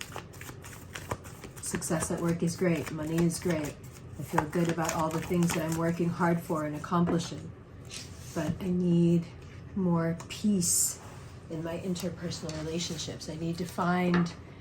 Success at work is great, money is great. I feel good about all the things that I'm working hard for and accomplishing. But I need more peace in my interpersonal relationships. I need to find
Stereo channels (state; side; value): identical; both; correlation 1.00